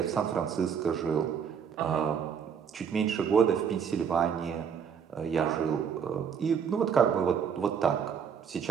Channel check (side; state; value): left; quieter; 7.3 dB